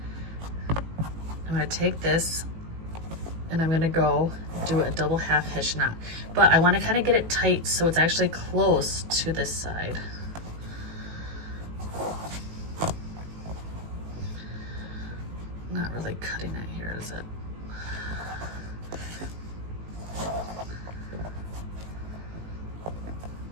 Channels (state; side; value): late; left; 18 ms